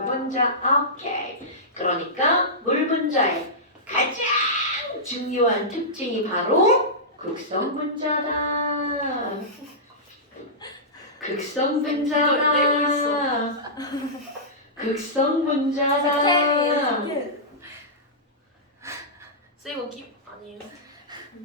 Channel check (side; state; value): both; normal; correlation -0.15